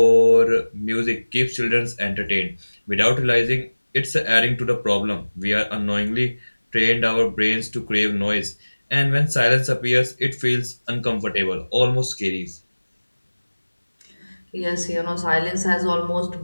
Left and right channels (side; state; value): both; inverted; correlation -1.00